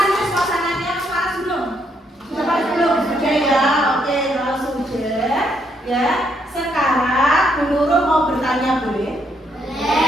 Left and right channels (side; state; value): both; normal; correlation 0.74